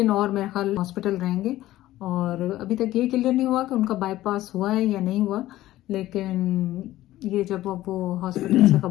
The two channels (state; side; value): quieter; right; 15.3 dB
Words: और मेरे ख्याल हॉस्पिटल रहेंगे, और अभी तक ये क्लियर नहीं हुआ कि उनका बाईपास हुआ है या नहीं हुआ, लेकिन ये जब वो हॉस्पिटल से